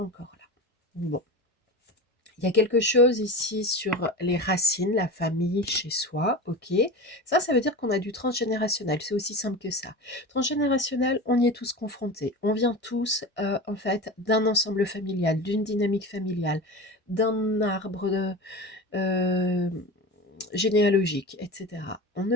encore là. Bon. Il y a quelque chose ici sur les racines, la famille chez soi, ok. Ça veut dire qu'on a du transgénérationnel, c'est aussi simple que ça. Transgénérationnel, on y est tous confrontés. On vient tous, en fait, d'un ensemble familial, d'une dynamique familiale, d'un arbre généalogique, etc. On ne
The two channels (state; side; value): normal; both; correlation 0.29